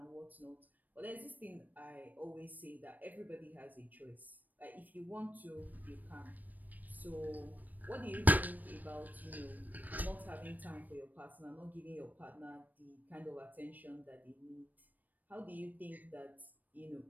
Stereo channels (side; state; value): left; late; 0.084 ms